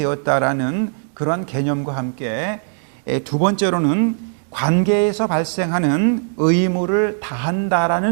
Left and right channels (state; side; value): silent; left; digital silence